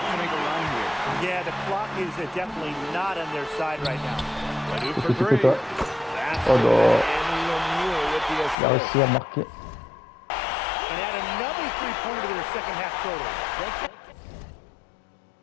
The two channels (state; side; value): drops out; right; at 8.6 s